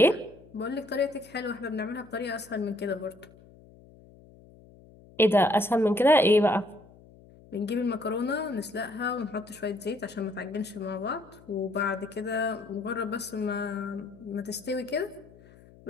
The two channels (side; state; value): left; noise; hum, 24 dB below the sound